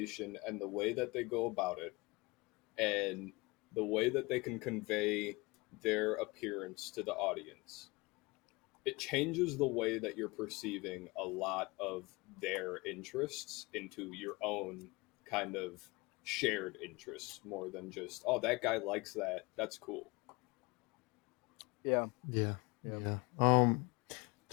and the way that they go about it, and the way that they can convey their appearance to the audience, it changes the way that you're perceiving a lot of their interests into your own kind of shared interests more than just, oh, that guy likes that, that's cool. Yeah. Yeah. Yeah. Yeah.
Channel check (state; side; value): quieter; right; 25.0 dB